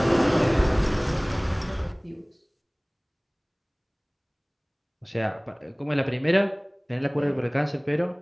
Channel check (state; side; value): identical; both; correlation 1.00